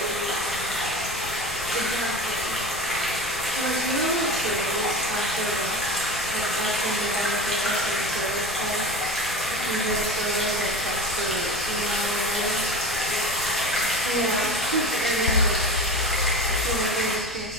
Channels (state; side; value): noise; left; rumble, 16 dB below the sound